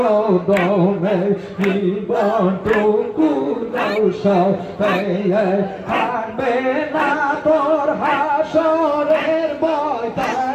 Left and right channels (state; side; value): identical; both; correlation 1.00